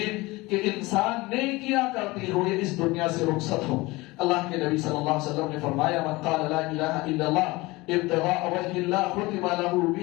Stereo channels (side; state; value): right; quieter; 21.9 dB